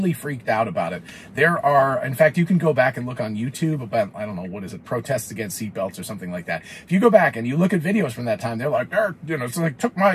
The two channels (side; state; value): both; identical; correlation 1.00